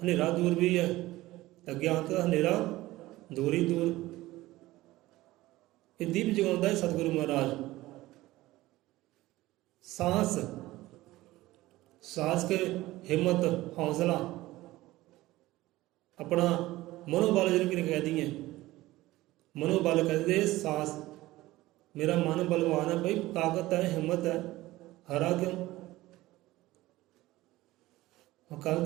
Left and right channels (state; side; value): quieter; left; 17.7 dB